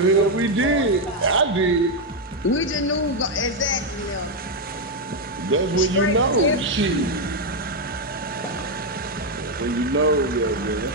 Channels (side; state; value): both; normal; correlation 0.03